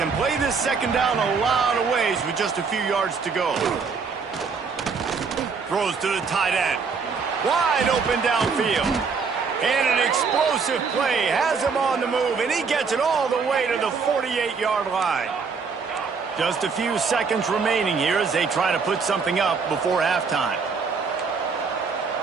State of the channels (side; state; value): left; quieter; 5.3 dB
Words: play this second down a lot of ways with just a few yards to go. Throws to the tight end. Wide open downfield. And an explosive play has him on the move, and he gets it all the way to the 48-yard line. Just a few seconds remaining here as they try to put something up before halftime.